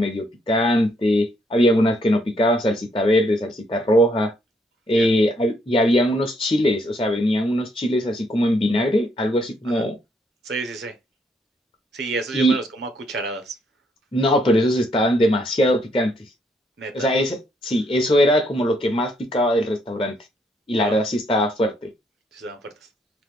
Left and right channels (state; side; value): normal; both; correlation 0.71